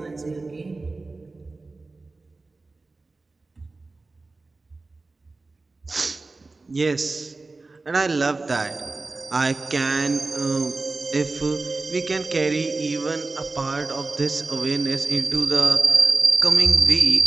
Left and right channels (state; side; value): quieter; left; 3.6 dB